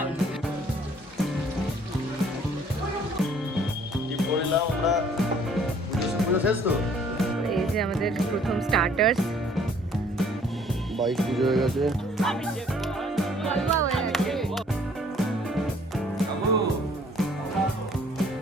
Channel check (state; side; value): normal; both; correlation 0.58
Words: কি করলাম আমরা পুজো শেষ তো এই যে আমাদের প্রথম স্টার্টার্স। বাইক পুজো হয়ে গেছে